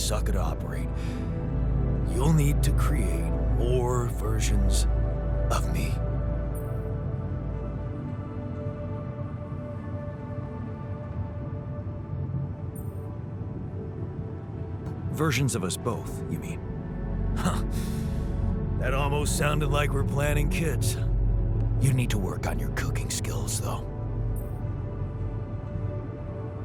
to operate. You'll need to create more versions of me. Versions of us both, you mean? Huh. That almost sounded like we're planning kids. You need to work on your cooking skills, though.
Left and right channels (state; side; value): identical; both; correlation 1.00